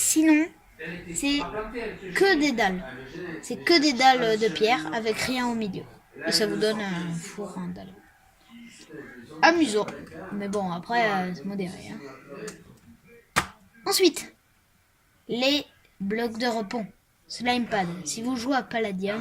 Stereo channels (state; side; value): identical; both; correlation 1.00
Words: c'est que des dalles. C'est que des dalles de pierre avec rien au milieu. Et ça vous donne un four en dalle. Amusant. Mais bon, après, c'est modéré. Hein. Ensuite, les blocs de repos. Slime pad. Si vous jouez à